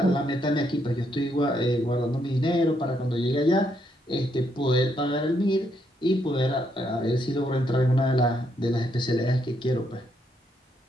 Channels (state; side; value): normal; both; correlation 0.75